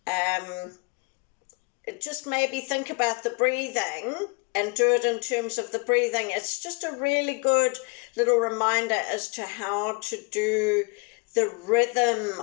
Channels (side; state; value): right; quieter; 30.8 dB